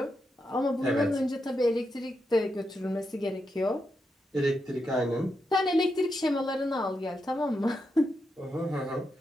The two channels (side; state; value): both; normal; correlation 0.85